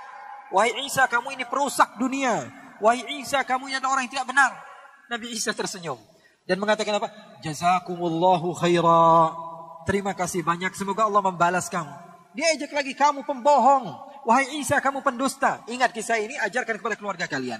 Wahai Isa, kamu ini perusak dunia. Wahai Isa, kamu ini adalah orang yang tidak benar." Nabi Isa tersenyum dan mengatakan apa? "Jazakumullahu khaira." Terima kasih banyak, semoga Allah membalas kamu. Dia ejek lagi, "Kamu pembohong. Wahai Isa, kamu pendusta." Ingat kisah ini, ajarkan kepada keluarga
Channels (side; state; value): both; identical; correlation 1.00